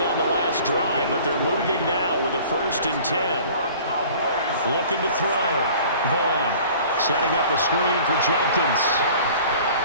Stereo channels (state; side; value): inverted; both; correlation -0.47